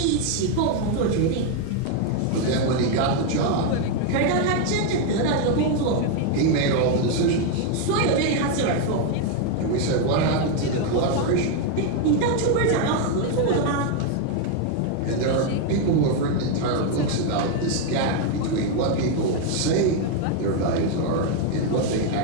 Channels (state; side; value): different; both; correlation 0.01